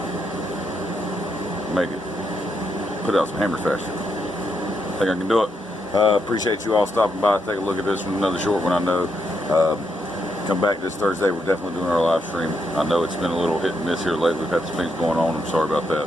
make it, put out some hammers faster. I think I can do it. Appreciate you all stopping by. Take a look at this one, another short one I know. Come back this Thursday. We're definitely doing our live stream. I know it's been a little hit and miss here lately. We've had some things going on. I'm sorry about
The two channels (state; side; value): normal; both; correlation 0.80